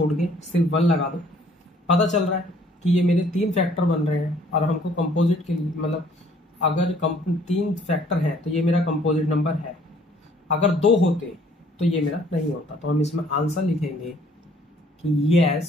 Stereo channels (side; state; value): both; normal; correlation 0.60